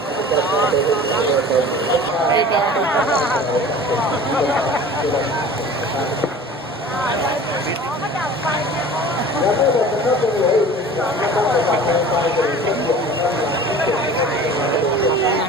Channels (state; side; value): normal; both; correlation 0.42